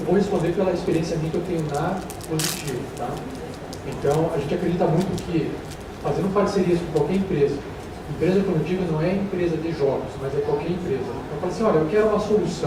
vou responder pela experiência minha que eu tenho na Positivo, tá? Então, a gente acredita muito que, fazendo parcerias com qualquer empresa, Empresa, quando eu digo, não é empresa de jogos, mas é qualquer empresa. Eu falo assim, olha, eu quero uma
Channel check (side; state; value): both; identical; correlation 1.00